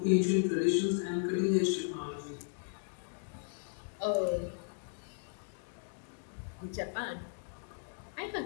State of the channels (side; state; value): right; silent; digital silence